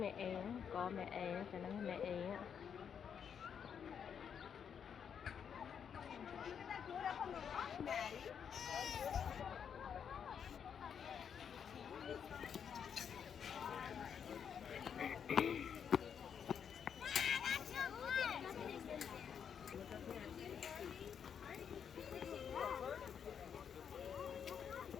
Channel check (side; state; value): right; quieter; 7.6 dB